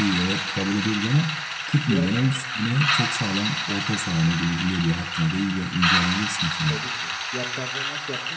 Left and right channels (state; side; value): identical; both; correlation 1.00